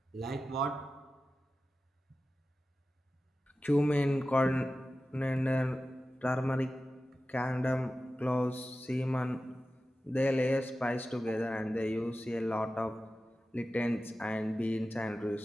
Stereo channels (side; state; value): both; normal; correlation 0.94